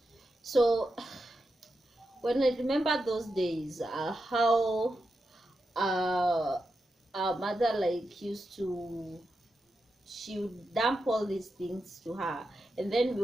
So when I remember those days, how our mother like used to, she would dump all these things to her, and then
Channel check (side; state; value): both; normal; correlation 0.88